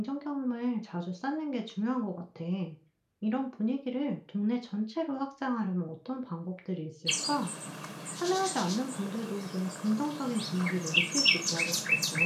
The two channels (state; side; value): identical; both; correlation 1.00